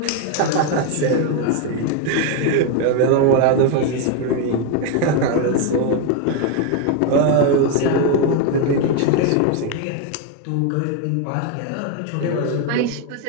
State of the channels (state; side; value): different; both; correlation 0.01